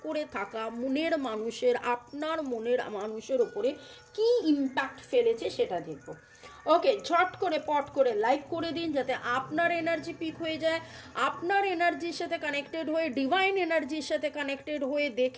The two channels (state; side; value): identical; both; correlation 1.00